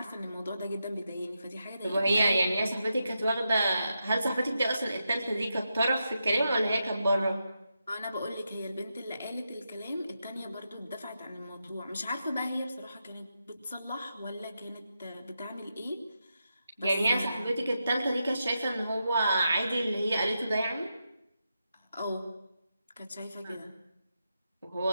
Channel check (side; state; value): both; inverted; correlation -0.86